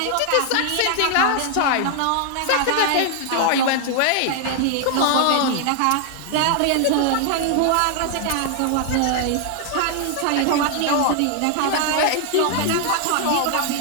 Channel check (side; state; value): both; different; correlation 0.00